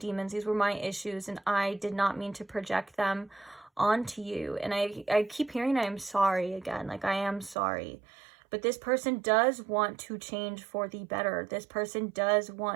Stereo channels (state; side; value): drops out; left; at 7.6 s